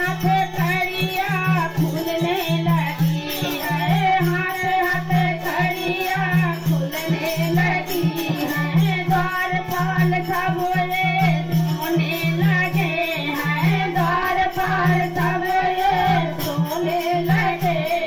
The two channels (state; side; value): identical; both; correlation 1.00